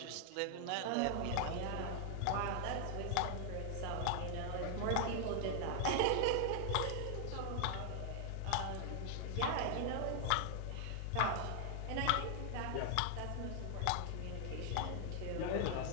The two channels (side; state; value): both; different; correlation 0.00